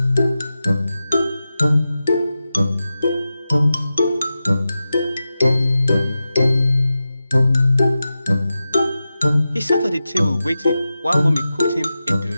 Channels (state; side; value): inverted; both; correlation -0.92